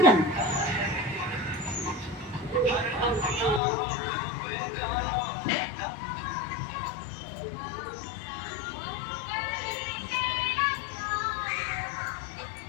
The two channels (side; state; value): right; drops out; at 3.6 s